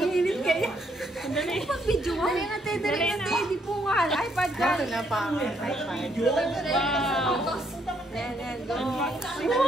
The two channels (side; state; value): both; normal; correlation 0.72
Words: init kaya. Dali. Pag-video mo. Dali na tayo, dali na tayo. Di po nga. iPad ka. Ito na pa ang iPad. Wow. Yan, go.